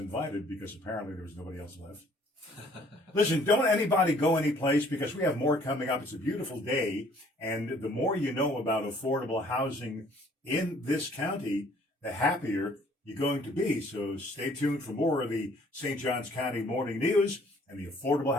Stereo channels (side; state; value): both; normal; correlation 0.59